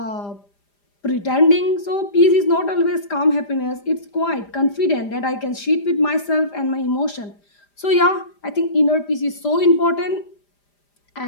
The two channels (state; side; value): late; right; 5.0 ms